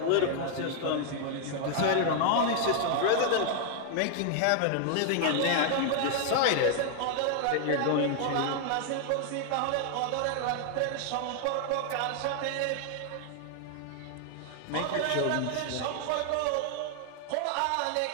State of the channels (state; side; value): different; both; correlation 0.00